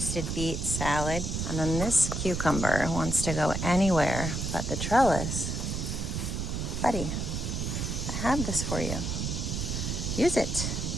beet salad. And then this cucumber wants to go anywhere but the trellis. Buddy, I have this for you. Use it.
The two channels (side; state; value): right; noise; rumble, 2 dB below the sound